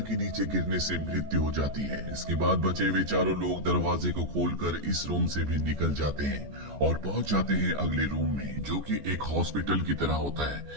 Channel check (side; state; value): left; late; 14 ms